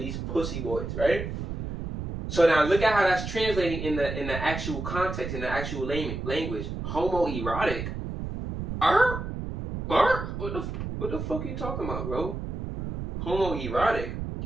pussy boys, right? So now look at how that's translating in the actual context, in the actual language. Homoerotic? What the fuck are you talking about, bro? Homoerotic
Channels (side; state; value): right; noise; rumble, 5 dB below the sound